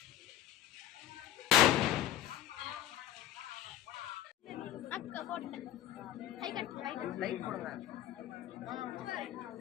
அக்கா போட்டேன். கை கட்டு லைட் போடுங்க.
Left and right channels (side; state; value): right; quieter; 12.4 dB